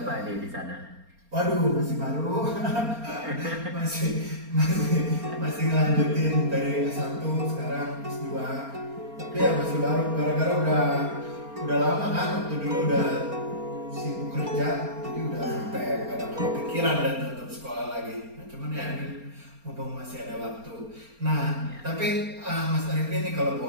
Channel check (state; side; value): late; left; 4.3 ms